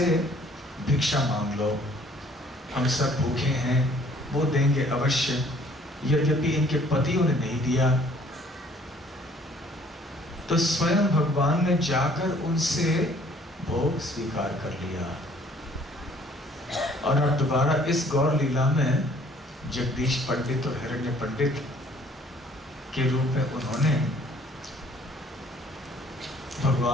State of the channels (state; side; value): normal; both; correlation 0.58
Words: भिक्षा मांग लो। हम सब भूखे हैं, वो देंगे अवश्य, यद्यपि इनके पतियों ने नहीं दिया। तो स्वयं भगवान ने जाकर उनसे भोग स्वीकार कर लिया। और अब दोबारा इस गौर लीला में जगदीश पंडित और हिरण्य पंडित के रूप में उन्होंने